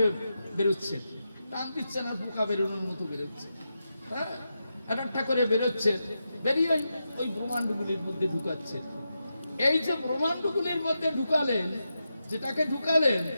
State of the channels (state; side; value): inverted; both; correlation -0.88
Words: বেরোচ্ছে, টান দিচ্ছে না, পোকা বেরোনোর মতো বেরোচ্ছে। হ্যাঁ, একটা করে বেরোচ্ছে, বেরিয়ে ওই ব্রহ্মাণ্ডগুলির মধ্যে ঢুকাচ্ছে। এই যে ব্রহ্মাণ্ডগুলির মধ্যে ঢুকালেন, যেটাকে ঢুকালেন,